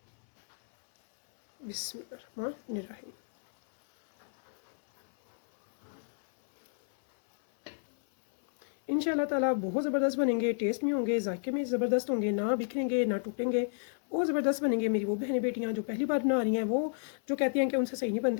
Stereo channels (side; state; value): right; silent; 57 dB below the other